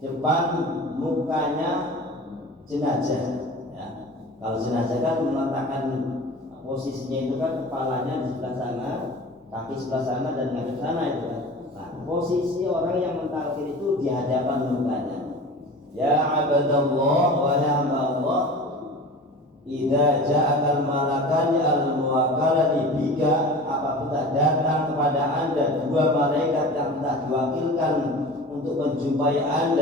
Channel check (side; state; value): both; normal; correlation 0.37